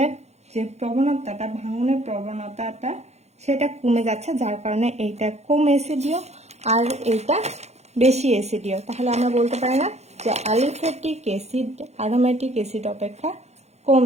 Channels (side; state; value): left; late; 0.32 ms